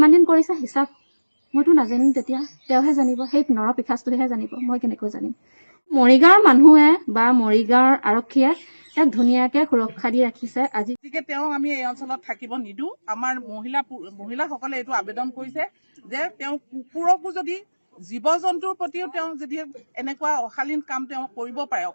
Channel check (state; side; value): inverted; both; correlation -1.00